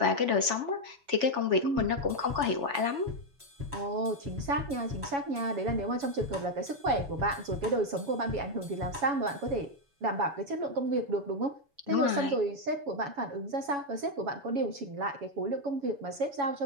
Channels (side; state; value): left; late; 7.1 ms